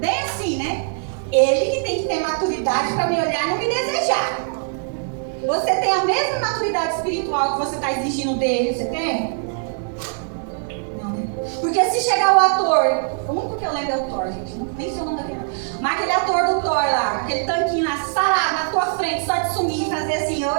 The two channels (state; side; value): silent; left; digital silence